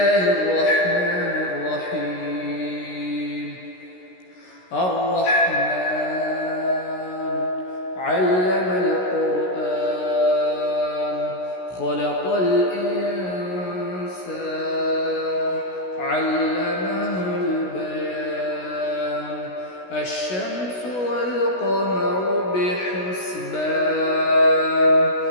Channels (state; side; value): late; right; 16 ms